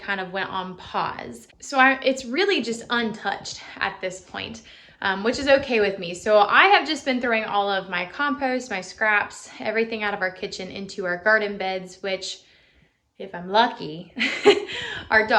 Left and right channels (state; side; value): identical; both; correlation 1.00